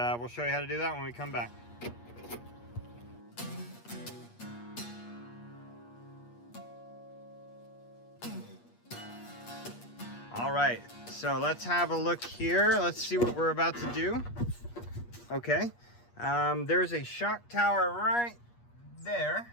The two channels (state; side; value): late; right; 8.4 ms